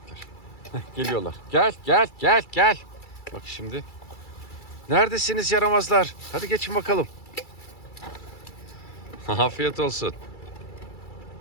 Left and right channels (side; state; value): right; late; 2.3 ms